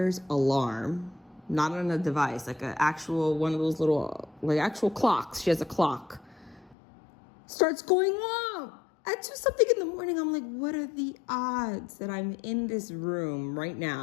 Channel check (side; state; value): right; drops out; at 6.8 s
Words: alarm, not on a device, like an actual, one of those little, like actual clocks. She has a clock. Starts going off at 2-something in the morning. I'm like, what are the odds that I'm in this room right